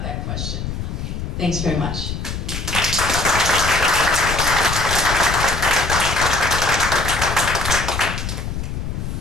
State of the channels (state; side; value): noise; left; rumble, 5 dB below the sound